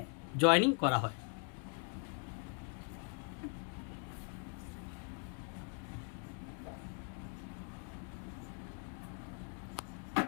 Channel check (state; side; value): quieter; right; 38.6 dB